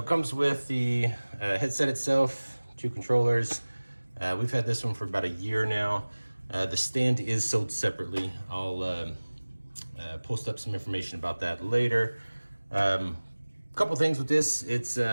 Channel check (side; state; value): both; inverted; correlation -1.00